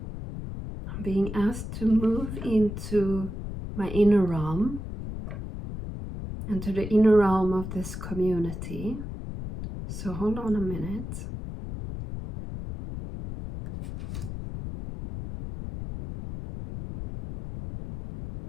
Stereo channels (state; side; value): noise; left; rumble, 7 dB below the sound